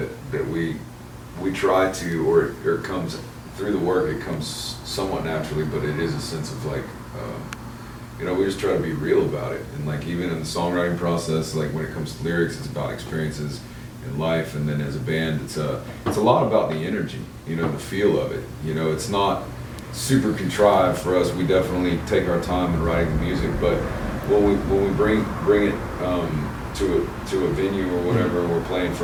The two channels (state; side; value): identical; both; correlation 1.00